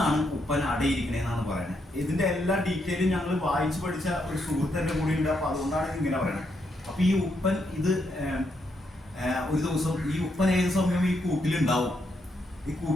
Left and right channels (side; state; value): both; normal; correlation 0.79